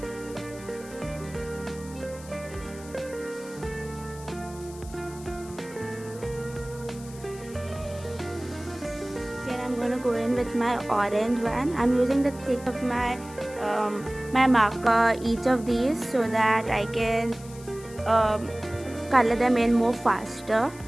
I'm going to go in with my orange one. I'm using the tip of my my marker each of these so that I can color them in more faster.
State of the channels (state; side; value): noise; left; hiss, 19 dB below the sound